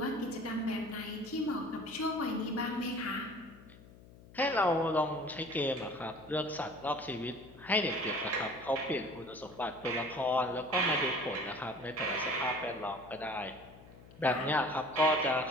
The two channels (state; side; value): noise; left; hum, 21 dB below the sound